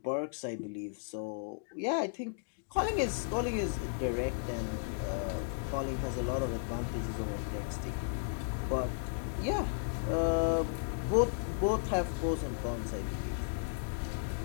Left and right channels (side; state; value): right; silent; digital silence